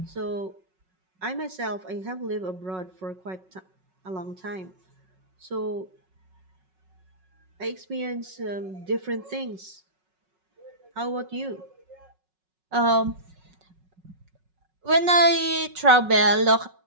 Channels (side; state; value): left; late; 5.4 ms